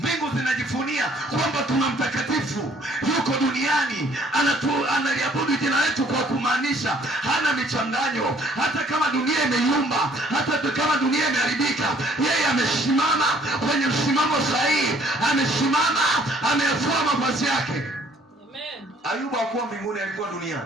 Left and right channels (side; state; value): both; normal; correlation 0.61